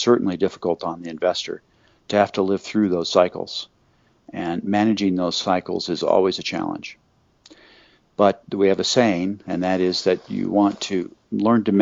difficult on the investor to have to live through those cycles. And managing those cycles is always a challenge. But we have a saying, and that is that you want to learn to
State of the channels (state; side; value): identical; both; correlation 1.00